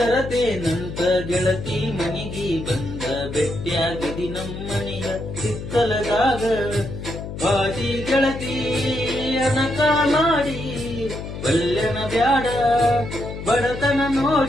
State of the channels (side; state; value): left; noise; hum, 8 dB below the sound